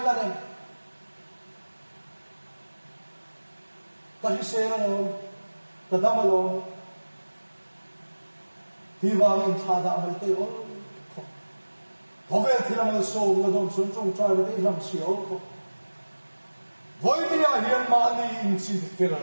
la nên ta hi se na lo ta dam lo thì vào in thà đã mấy tay ôn có vẻ thì làm sâu là đồng xuân trong trai với tay làm xíu với đi à hiện mà ni in xin phèn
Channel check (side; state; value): both; inverted; correlation -1.00